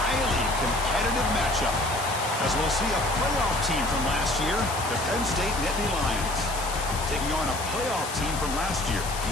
competitive matchup, as we'll see a playoff team from last year, the Penn State Nittany Lions, taking on a playoff team from last year,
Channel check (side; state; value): left; noise; hiss, 8 dB below the sound